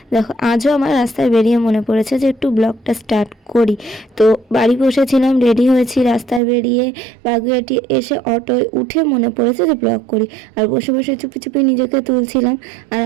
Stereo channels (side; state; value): left; drops out; at 6.4 s